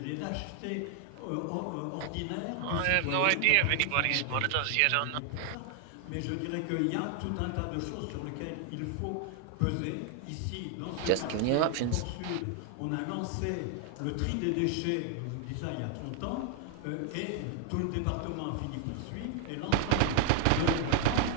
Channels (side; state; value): both; different; correlation 0.00